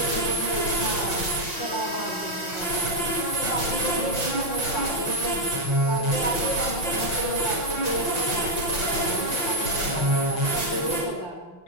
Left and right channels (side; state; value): right; late; 6.0 ms